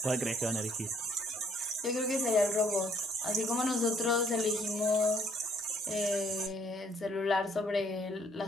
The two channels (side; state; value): both; normal; correlation 0.65